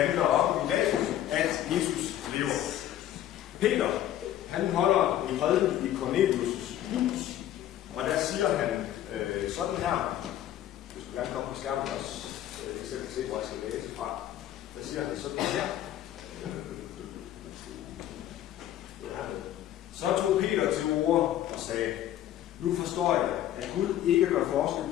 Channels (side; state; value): right; quieter; 12.2 dB